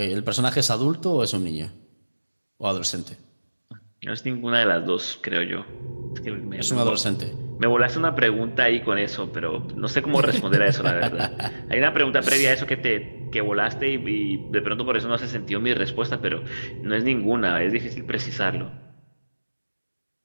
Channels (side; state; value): both; inverted; correlation -1.00